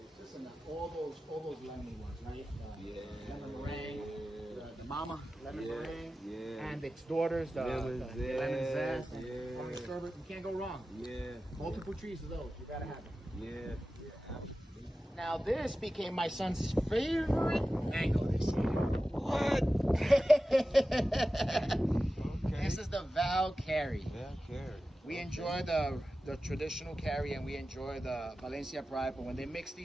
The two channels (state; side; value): normal; both; correlation 0.94